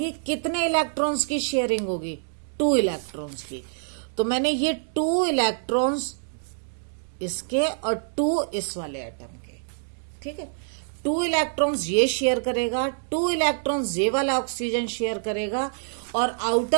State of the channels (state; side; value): silent; left; digital silence